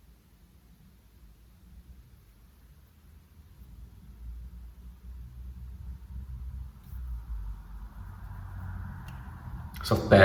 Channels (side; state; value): both; identical; correlation 1.00